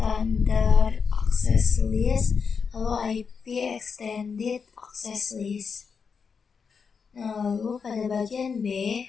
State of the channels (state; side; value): quieter; right; 5.8 dB